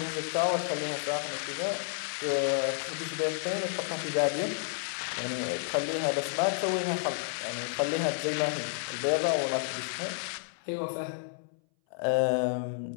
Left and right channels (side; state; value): right; silent; 57 dB below the other